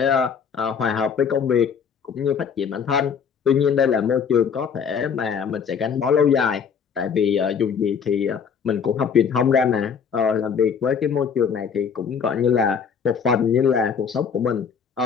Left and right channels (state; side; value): quieter; right; 6.7 dB